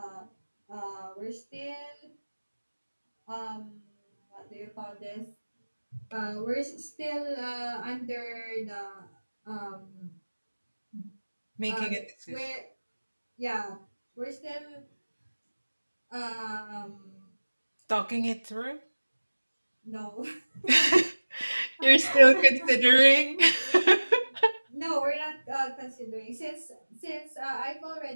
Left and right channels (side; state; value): both; inverted; correlation -1.00